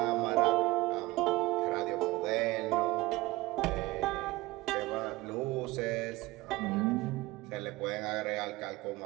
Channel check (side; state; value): left; quieter; 19.5 dB